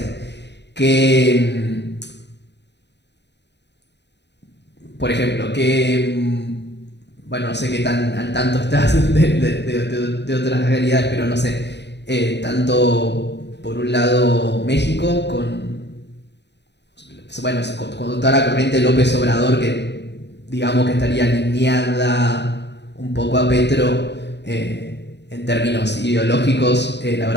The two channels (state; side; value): late; right; 0.50 ms